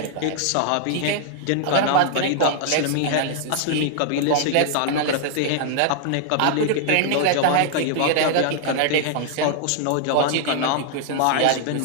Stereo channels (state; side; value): different; both; correlation -0.01